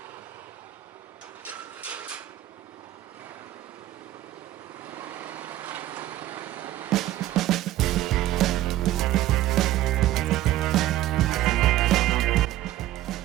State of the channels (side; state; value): left; quieter; 14.5 dB